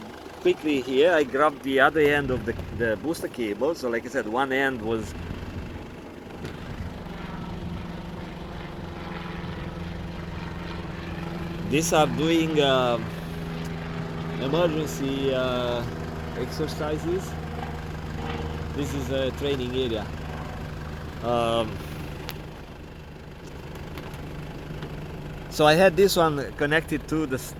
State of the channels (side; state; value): both; identical; correlation 1.00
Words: quickly here. I grabbed the other end of the booster cable. So like I said, one end was these are doing emergency exercises. This is a training area. So I had this one connected to the